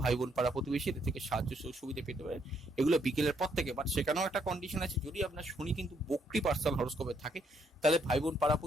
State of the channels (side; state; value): both; normal; correlation 0.73